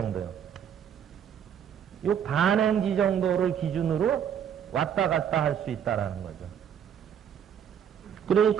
이 반행지 정도를 기준으로 왔다 갔다 할 수 있다라는 거죠.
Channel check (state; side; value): quieter; left; 8.7 dB